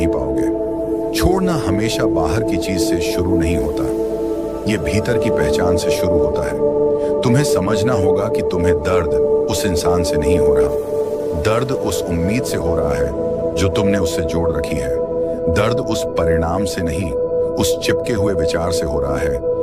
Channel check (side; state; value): both; identical; correlation 1.00